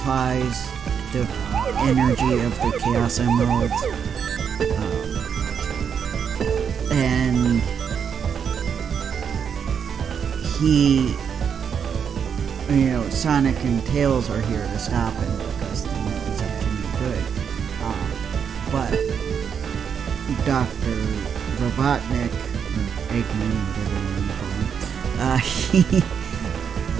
the energy of the Chaos Emeralds, and Sonic and Tails are here to stop him because the movie's actually good. But Doctor Robotnick, I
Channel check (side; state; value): left; quieter; 7.3 dB